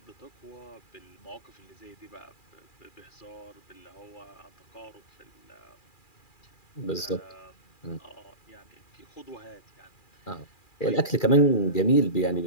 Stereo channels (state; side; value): late; right; 2.4 ms